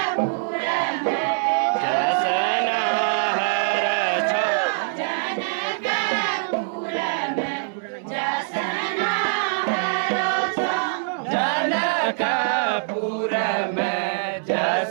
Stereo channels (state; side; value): silent; left; 63 dB below the other